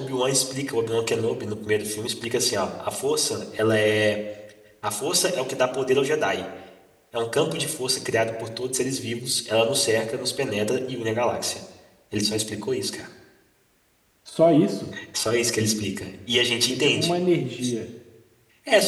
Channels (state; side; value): identical; both; correlation 1.00